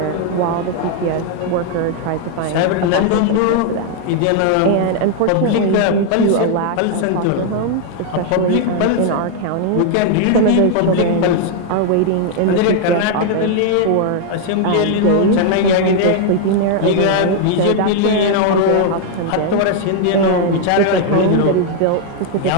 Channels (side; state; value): both; different; correlation 0.00